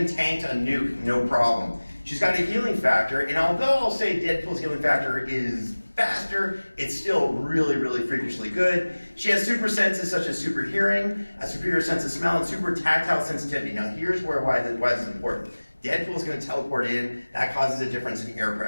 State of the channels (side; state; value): both; inverted; correlation -1.00